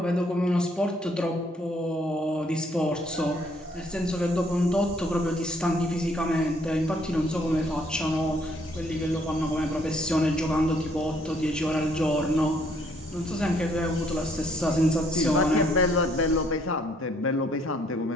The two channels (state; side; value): normal; both; correlation 0.66